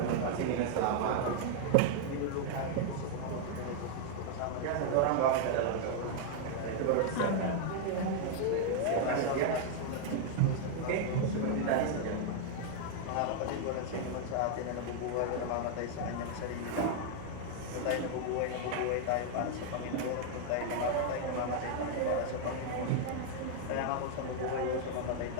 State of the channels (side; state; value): both; different; correlation 0.00